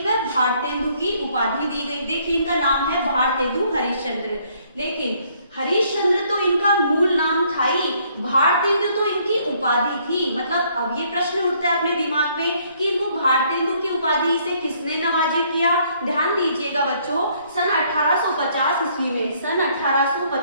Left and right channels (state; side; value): inverted; both; correlation -0.65